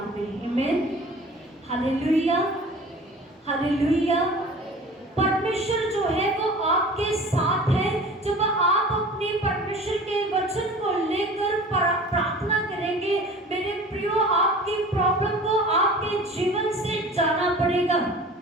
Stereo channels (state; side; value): normal; both; correlation 0.42